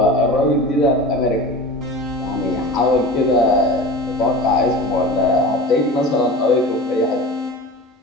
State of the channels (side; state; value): both; normal; correlation 0.34